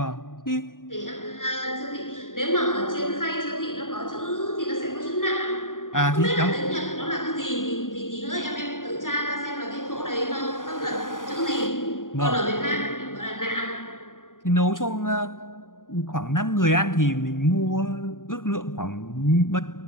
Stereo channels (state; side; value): late; right; 0.89 ms